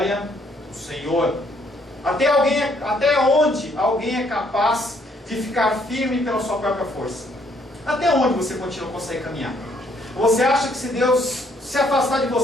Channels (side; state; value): both; normal; correlation 0.67